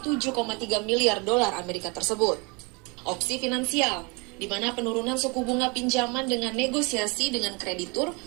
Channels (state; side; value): quieter; left; 29.3 dB